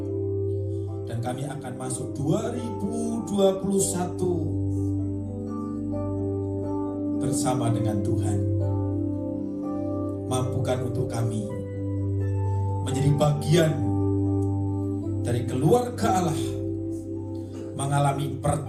Dan kami akan masuk 2021 bersama dengan Tuhan. Mampukan untuk kami menjadi bagian dari keluarga Allah, mengalami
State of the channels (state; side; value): identical; both; correlation 1.00